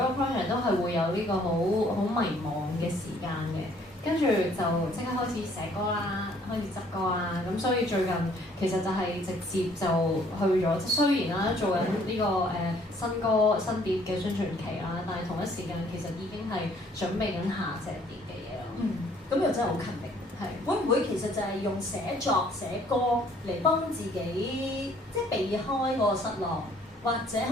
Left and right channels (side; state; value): both; normal; correlation 0.60